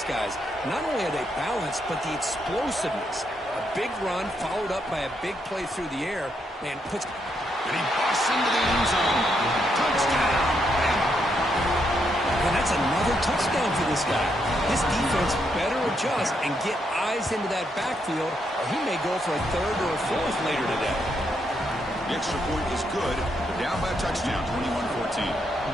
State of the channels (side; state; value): both; normal; correlation 0.78